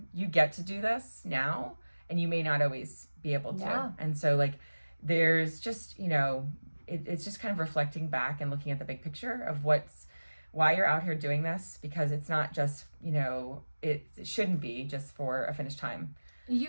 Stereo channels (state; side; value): inverted; both; correlation -1.00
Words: you get to do this now, and you may not always be able to. And so, like, there's just, it's just kind of reflecting back and looking at the big picture of why you're out here doing this, because it's not just, it shouldn't be just for a finish time.